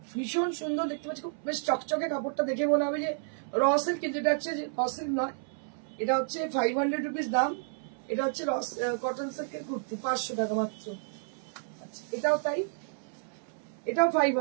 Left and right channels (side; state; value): left; silent; 57 dB below the other